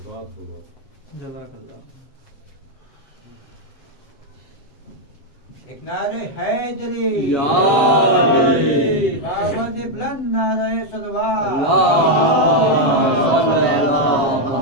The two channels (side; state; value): right; late; 7.2 ms